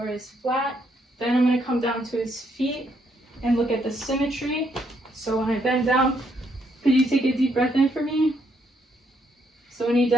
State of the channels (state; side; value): normal; both; correlation 0.73